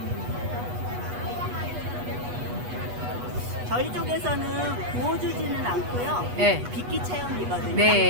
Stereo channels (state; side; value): late; left; 8.2 ms